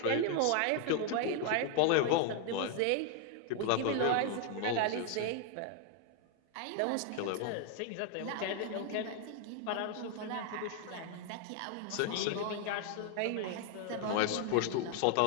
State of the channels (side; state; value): both; different; correlation 0.00